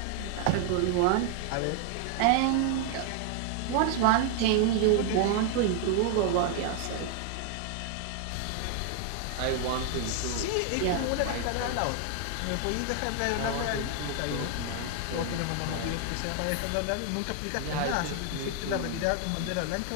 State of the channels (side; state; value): both; different; correlation 0.00